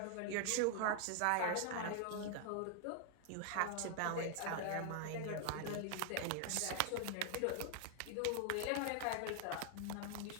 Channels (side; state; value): both; different; correlation 0.00